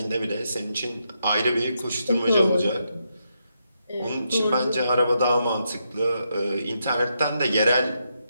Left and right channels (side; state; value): both; inverted; correlation -0.81